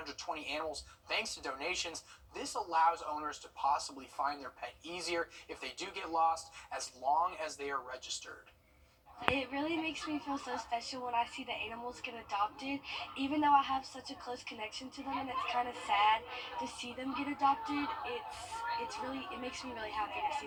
animals thanks to donations. This allows owners to possibly find their pet easier if they do get lost, as long as they are registered. It really makes me feel so special when I see the animals get adopted, even though I have such a close connection to them, and it's kind of sad to see them get adopted. It makes me really happy to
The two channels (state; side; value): identical; both; correlation 1.00